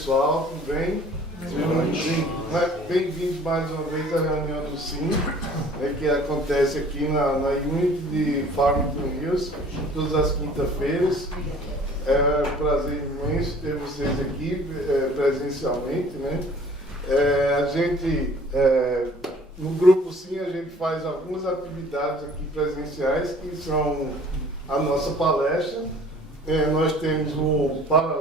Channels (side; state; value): both; normal; correlation 0.51